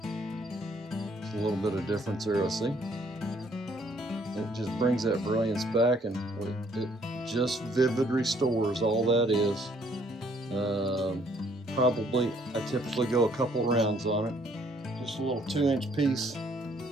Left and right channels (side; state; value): both; normal; correlation 0.65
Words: There's a little bit of difference there, I see. It just brings that brilliance back, and it just Vivid Restores, all that is. Probably, I typically go a couple rounds on it. Just a little 2-inch piece